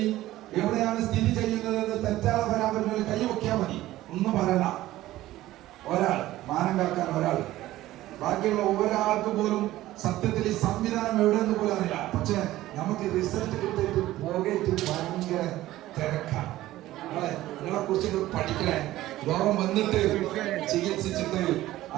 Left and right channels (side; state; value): left; quieter; 15.6 dB